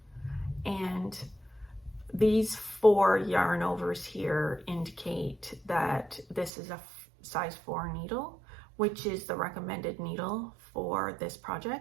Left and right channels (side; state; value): left; drops out; at 6.5 s